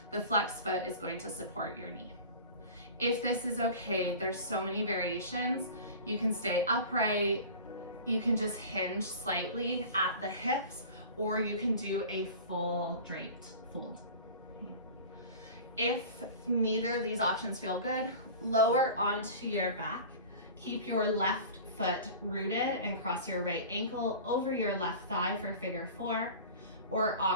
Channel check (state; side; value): inverted; both; correlation -0.38